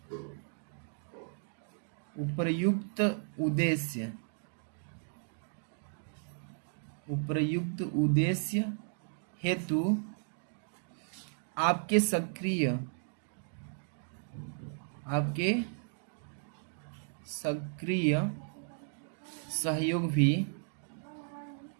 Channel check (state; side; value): silent; left; digital silence